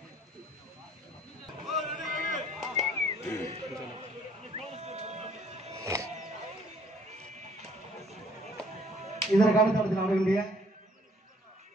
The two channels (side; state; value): both; normal; correlation 0.60